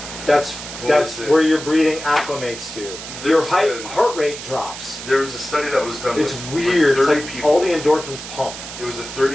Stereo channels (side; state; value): right; noise; hiss, 11 dB below the sound